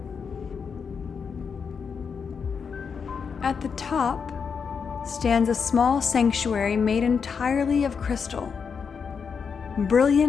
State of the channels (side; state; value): right; quieter; 6.1 dB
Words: At the top stands a small sanctuary made entirely of crystal.